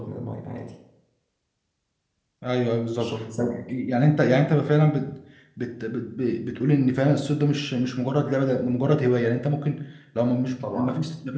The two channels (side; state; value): both; identical; correlation 1.00